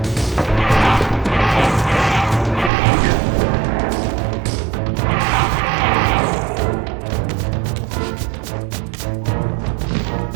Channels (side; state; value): left; drops out; at 2.7 s